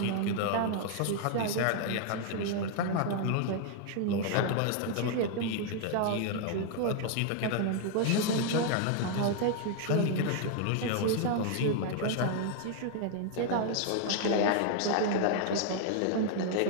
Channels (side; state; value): both; different; correlation 0.00